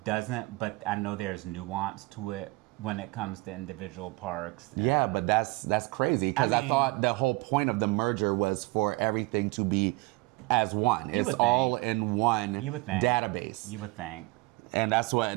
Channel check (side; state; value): left; quieter; 23.9 dB